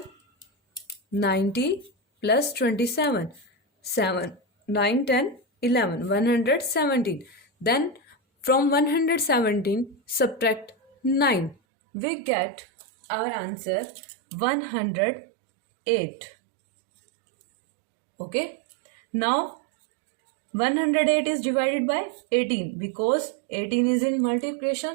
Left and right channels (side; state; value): left; drops out; at 11.6 s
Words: 90 plus 27, 7, 9, 10, 11, 117. Then from 117 subtract 9. We get our answer 108. Okay. Now 108 is divided by 18, because 18 is in